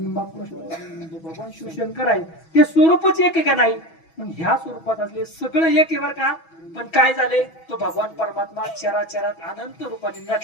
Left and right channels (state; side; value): late; right; 6.1 ms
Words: भगवान शिवशंकर आहे. ते स्वरूपच एक आहे का नाही. मग ह्या स्वरूपात असले सगळं एक आहे बरं का. पण काय झाले तो भगवान परमात्मा चराचरात अनंत रूपाने